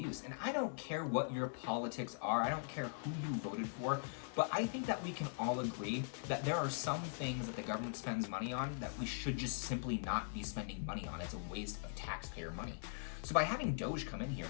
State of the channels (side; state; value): right; silent; digital silence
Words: And I don't care what your politics are. I don't care who you voted for. But I think that we can all agree that there are some things that the government spends money on that we should just simply not be spending money on. It's a waste of taxpayer money. So by having Doge come in here